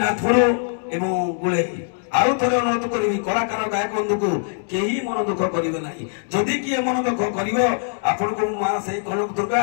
ଏବଂ ଗୁଳେଇ ଆଉ ଥରେ ଅନୁରୋଧ କରିବି କଳାକାର ଗାୟକ ବନ୍ଧୁକୁ କେହି ମନ ଦୁଃଖ କରିବେ ନାହିଁ। ଯଦି କିଏ ମନ ଦୁଃଖ କରିବ ଆପଣଙ୍କୁ ମା ସେଇ କନକ ଦୁର୍ଗା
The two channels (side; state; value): right; silent; digital silence